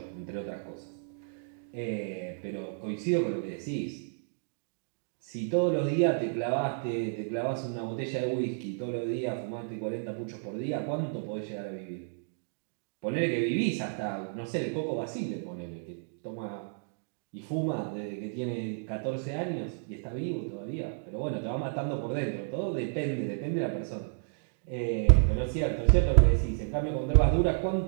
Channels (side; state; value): left; silent; digital silence